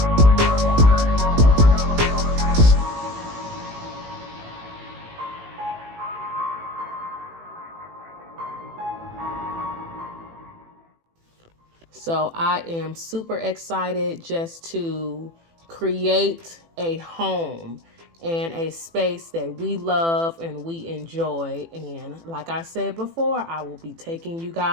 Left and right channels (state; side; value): late; left; 18 ms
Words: So I am super excited just to create a home and a space that we love and we enjoy. And like I said before, I will be taking you